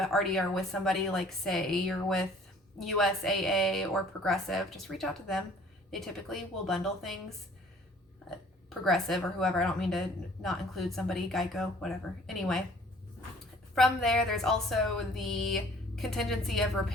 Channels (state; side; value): normal; both; correlation 0.54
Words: are with somebody, like say you're with USAA or Progressive, just reach out to them. They typically will bundle things. Progressive or whoever, I don't mean to not include somebody, Geico, whatever. Anyway, from there's also the contingency of